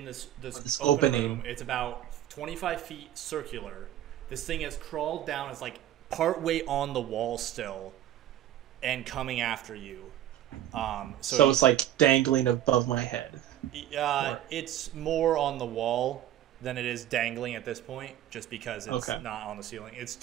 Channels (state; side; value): quieter; left; 12.1 dB